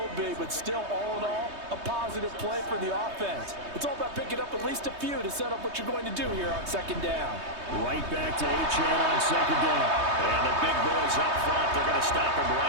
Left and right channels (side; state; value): left; late; 3.2 ms